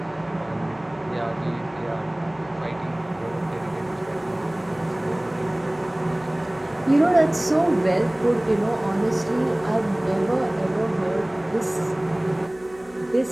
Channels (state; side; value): noise; left; hum, 25 dB below the sound